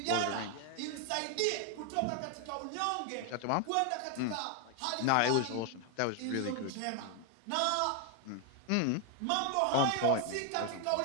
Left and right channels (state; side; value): different; both; correlation 0.00